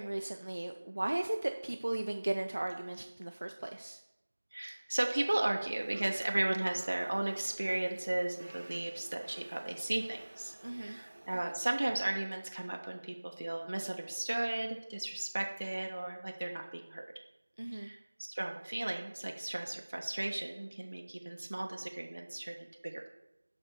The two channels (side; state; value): both; inverted; correlation -1.00